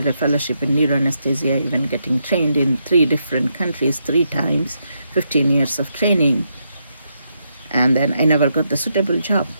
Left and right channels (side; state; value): both; inverted; correlation -0.80